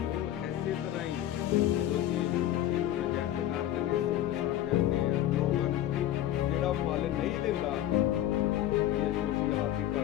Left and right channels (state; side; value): quieter; right; 12.6 dB